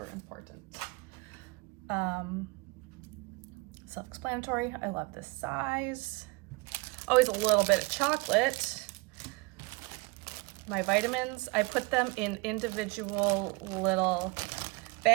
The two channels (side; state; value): left; quieter; 25.6 dB